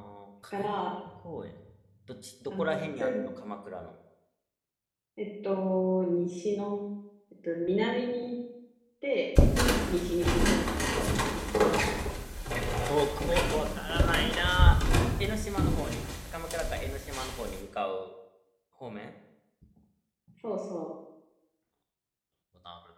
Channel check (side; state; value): both; identical; correlation 1.00